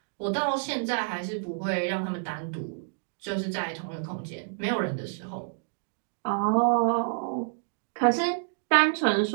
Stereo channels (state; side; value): silent; left; digital silence